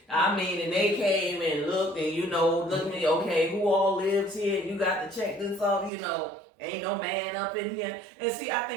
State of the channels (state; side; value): drops out; left; at 5.9 s